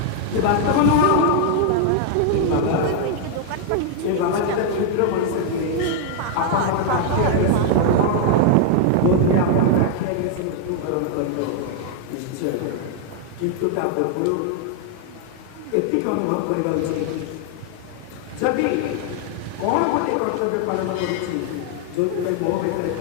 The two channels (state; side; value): different; both; correlation 0.00